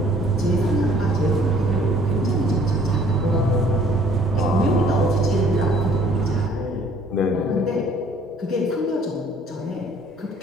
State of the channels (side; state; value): both; normal; correlation 0.57